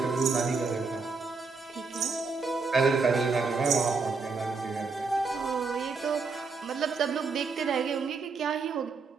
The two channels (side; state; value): left; quieter; 4.5 dB